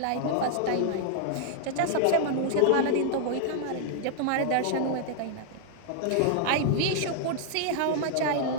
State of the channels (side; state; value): both; different; correlation 0.00